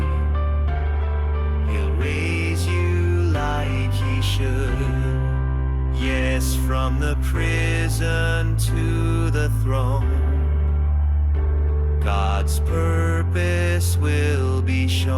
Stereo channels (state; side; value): identical; both; correlation 1.00